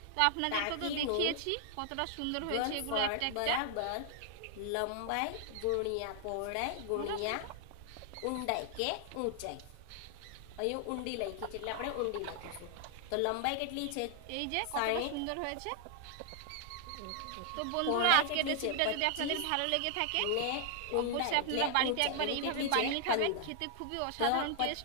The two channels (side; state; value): both; different; correlation 0.00